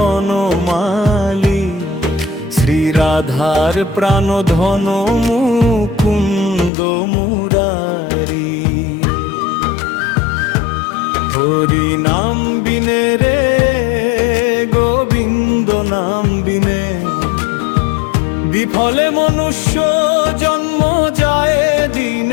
শ্রী রাধার প্রাণধন মুকুন্দ মুরারি। হরি নাম বিনে রে গোবিন্দ নাম বিনে বিফলে মনুষ্য জন্ম যায়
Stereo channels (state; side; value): drops out; right; at 6.7 s